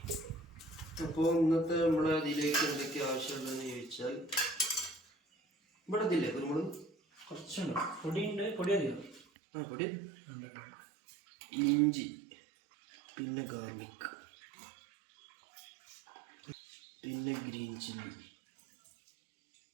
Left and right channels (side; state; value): left; drops out; at 9.2 s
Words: അപ്പോൾ ഇന്നത്തെ നമ്മളെ ഇതിലേക്ക് എന്തൊക്കെ ആവശ്യമുള്ളതെന്ന് ചോദിച്ചാൽ, ഇവിടെ ഇതില്ലേ കുരുമുളക് കുറച്ചുണ്ട്, പൊടിയുണ്ട്, പൊടി അധികം. പൊടി, ഇഞ്ചി, പിന്നെ ഗാർലിക്, പിന്നെ ഗ്രീൻ ചില്ലി,